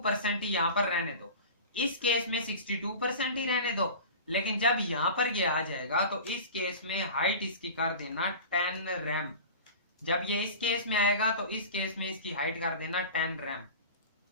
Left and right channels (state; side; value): inverted; both; correlation -0.35